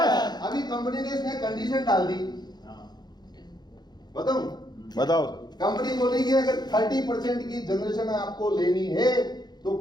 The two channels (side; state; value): right; late; 0.20 ms